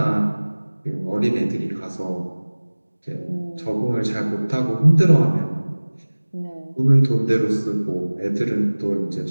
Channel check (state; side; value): inverted; both; correlation -1.00